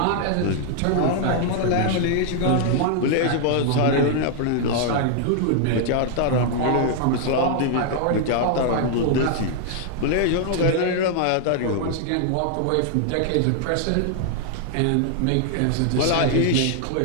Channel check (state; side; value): different; both; correlation 0.00